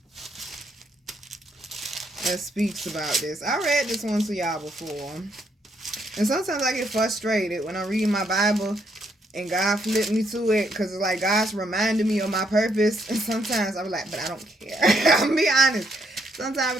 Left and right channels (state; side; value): normal; both; correlation 0.74